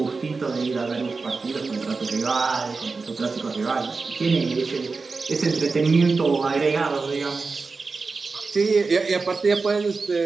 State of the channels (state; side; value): quieter; left; 4.2 dB